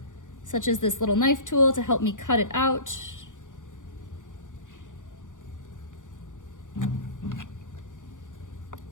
such as this little knife tool to help me cut it out.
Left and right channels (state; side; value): late; right; 0.87 ms